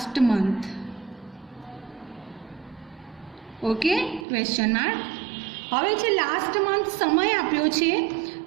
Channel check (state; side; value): drops out; left; at 4.2 s